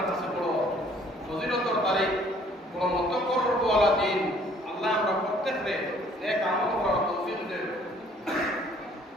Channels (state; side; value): normal; both; correlation 0.59